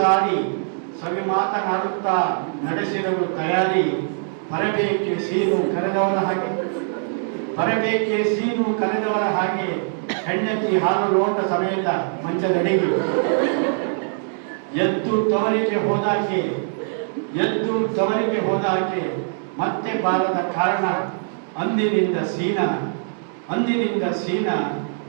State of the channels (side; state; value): left; silent; digital silence